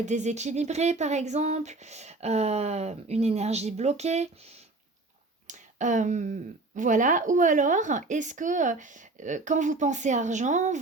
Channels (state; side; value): quieter; left; 3.2 dB